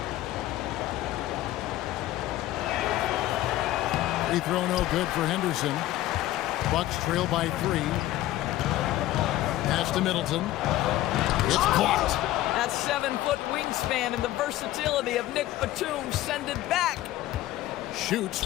Free throw no good for Henderson. Bucks trail by 3. Pass to Middleton. It's blocked. That 7-foot wingspan and the versatility of Nick Batum send it back. Shoots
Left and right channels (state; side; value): quieter; right; 15.2 dB